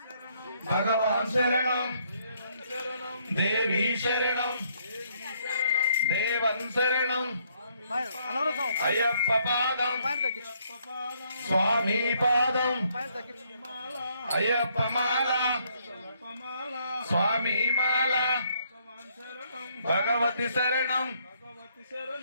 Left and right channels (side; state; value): both; inverted; correlation -0.70